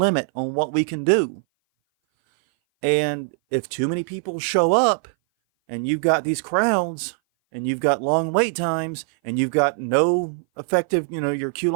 on what we can do. And if too many people show up, and you've got these crowds, and you've got long wait times, and you've got no effective, your queue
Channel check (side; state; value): left; silent; 58 dB below the other